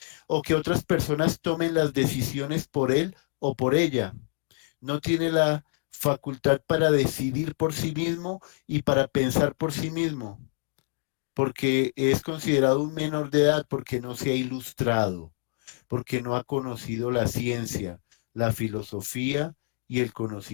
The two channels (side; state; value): right; silent; digital silence